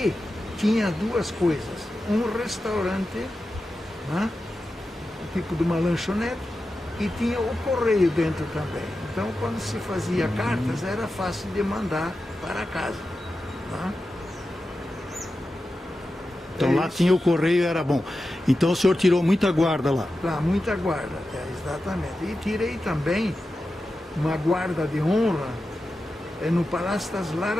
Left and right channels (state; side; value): normal; both; correlation 0.92